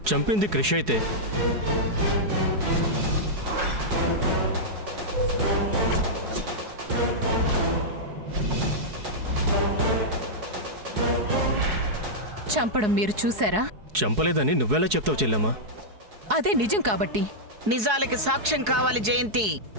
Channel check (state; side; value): late; left; 4.7 ms